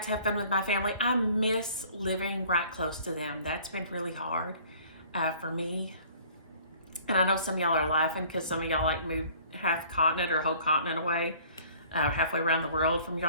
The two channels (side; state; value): both; inverted; correlation -0.53